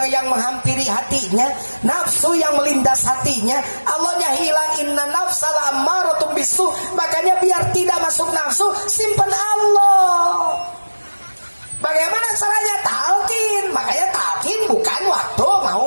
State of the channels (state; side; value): inverted; both; correlation -1.00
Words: menghampiri hatinya, nafsu yang melindas hatinya, Allahnya hilang. Inna nafsala ammaratun bisu. Makanya biar tidak masuk nafsu, simpan Allah. Bagaimana caranya? Talqin. Makanya talqin bukan waktu mau